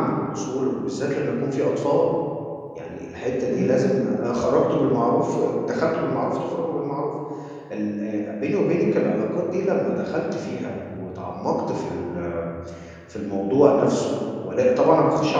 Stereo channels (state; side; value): identical; both; correlation 1.00